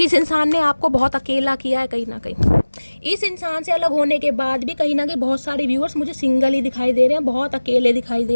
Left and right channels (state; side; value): inverted; both; correlation -1.00